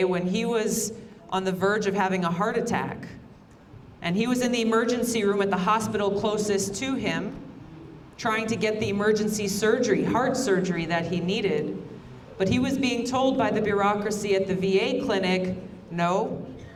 when he was on the verge of having a heart attack. And he was in the emergency room at the hospital closest to him, trying to get the emergency surgery, heart surgery that he needed. But he was being told by the bureaucracy at the VA clinic, no,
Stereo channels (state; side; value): identical; both; correlation 1.00